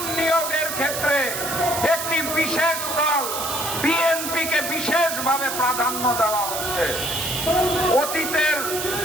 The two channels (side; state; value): right; noise; hiss, 4 dB below the sound